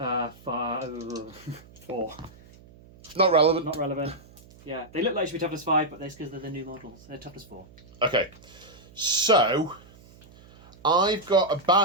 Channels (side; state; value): right; noise; hum, 24 dB below the sound